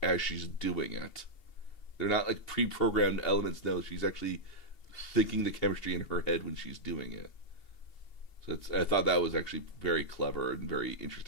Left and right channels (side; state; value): right; late; 2.8 ms